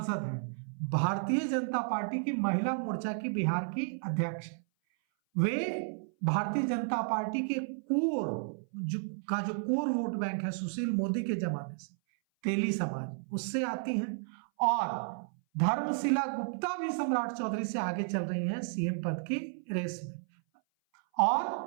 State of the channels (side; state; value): left; silent; 56 dB below the other